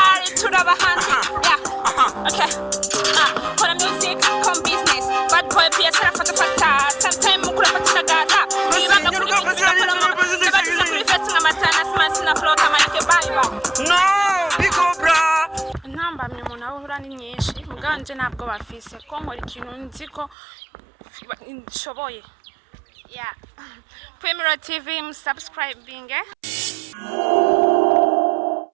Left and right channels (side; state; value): left; drops out; at 20.4 s